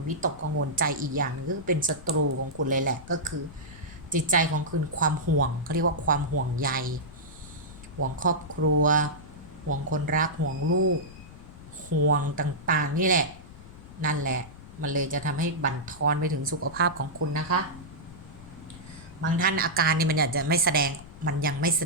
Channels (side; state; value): left; noise; rumble, 17 dB below the sound